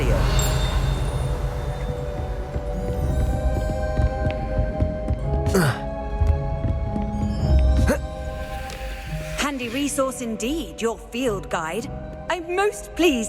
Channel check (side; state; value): both; identical; correlation 1.00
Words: Handy resource indeed, your field guide. I'm most